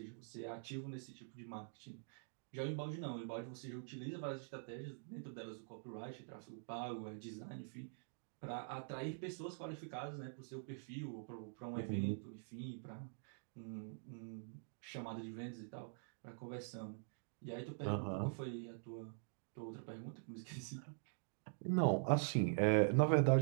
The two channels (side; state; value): left; silent; digital silence